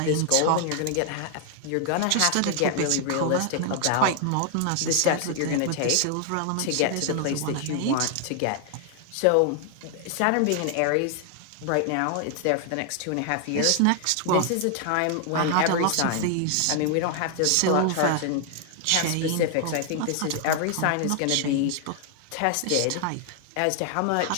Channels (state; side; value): different; both; correlation 0.00